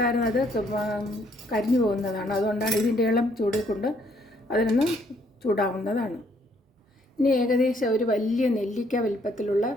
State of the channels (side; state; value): both; normal; correlation 0.68